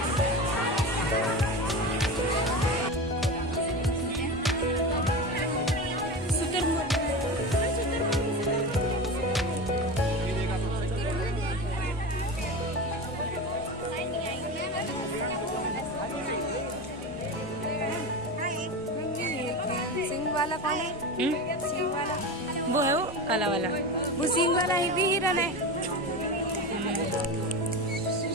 सिंह वाला कौन है? सिंह वाला वो है वो काला वाला। वो सिंह वाला ही भी हिरन है।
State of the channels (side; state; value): both; normal; correlation 0.25